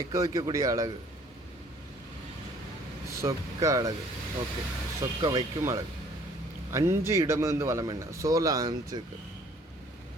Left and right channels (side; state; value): both; normal; correlation 0.57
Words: வைக்கக்கூடிய அழகு. சொக்க அழகு. ஓகே, சொக்க வைக்கும் அழகு. 5 இடமிருந்து வளம் என்ன? 5